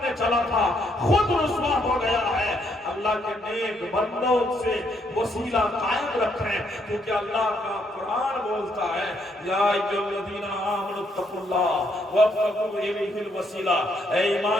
چلا تھا خود رسوا ہو گیا ہے۔ اللہ کے نیک بندوں سے وسیلہ قائم رکھیں، کیونکہ اللہ کا قرآن بولتا ہے یا ایھا الذین آمنوا اتقوا اللہ وابتغوا الیہ الوسیلہ، اے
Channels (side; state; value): both; normal; correlation 0.73